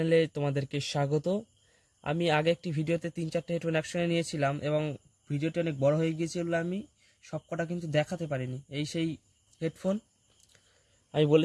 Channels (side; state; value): both; identical; correlation 1.00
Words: তোমাদেরকে স্বাগত। আমি আগে একটি ভিডিওতে 3-4টা হেডফোন একসঙ্গে নিয়েছিলাম এবং ভিডিওটি অনেক বড় হয়ে গিয়েছিল, আমি সবকটা কিন্তু দেখাতে পারিনি। এই সেই হেডফোন আমি